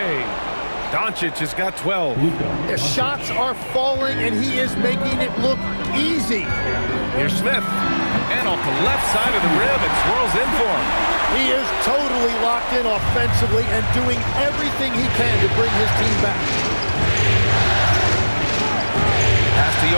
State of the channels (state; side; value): inverted; both; correlation -1.00